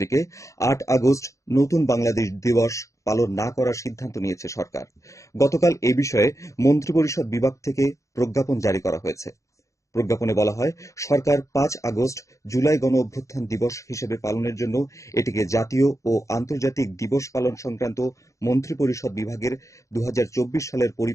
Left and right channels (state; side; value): late; right; 0.15 ms